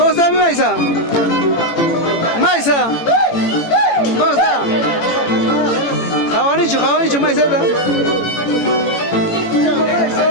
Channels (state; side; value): late; right; 18 ms